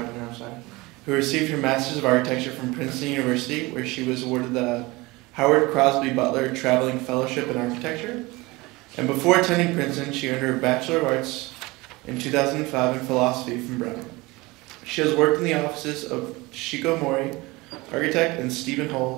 of Architecture from Princeton University, where she was awarded the Howard Crosby Butler Traveling Fellowship in Architecture. And before attending Princeton, she earned her Bachelor of Arts in 2005 in Philosophy from Brown. She has worked in the offices of Shiko Mori, architect, and Stephen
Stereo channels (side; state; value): left; quieter; 22.5 dB